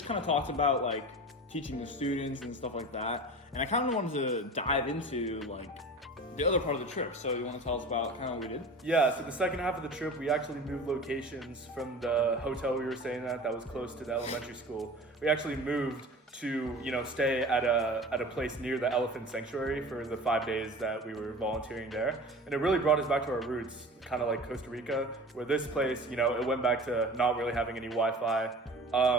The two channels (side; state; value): both; normal; correlation 0.37